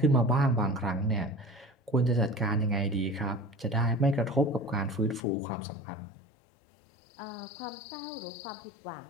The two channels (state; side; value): drops out; right; at 5.2 s